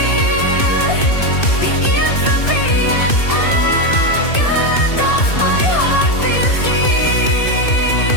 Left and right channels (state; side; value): late; right; 2.6 ms